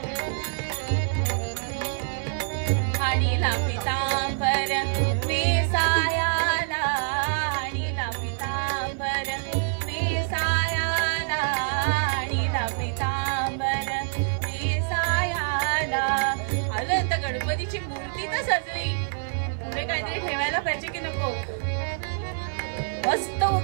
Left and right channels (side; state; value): left; silent; 61 dB below the other